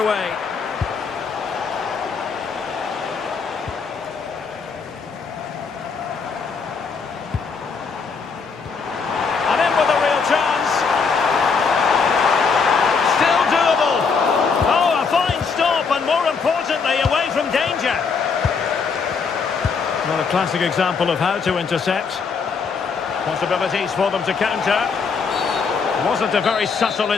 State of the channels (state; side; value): quieter; right; 5.3 dB